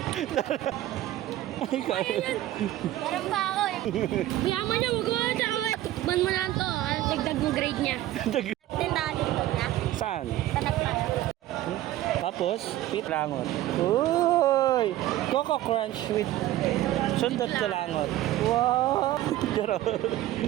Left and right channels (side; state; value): left; quieter; 14.6 dB